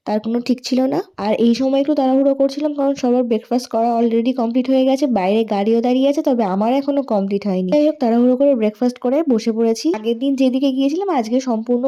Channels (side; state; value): both; identical; correlation 1.00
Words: তার কোনো ঠিক ছিল না। আর এই সময় একটু তাড়াহুড়ো করছিলাম, কারণ সবার ব্রেকফাস্ট করা অলরেডি কমপ্লিট হয়ে গেছে, বাইরে গাড়িও দাঁড়িয়ে আছে, তবে আমার এখনো কমপ্লিট হয়নি। যাই হোক, তাড়াহুড়ো করে ব্রেকফাস্ট করে বসে পড়েছি। আগের দিন যেদিকে গিয়েছিলাম আজকে সম্পূর্ণ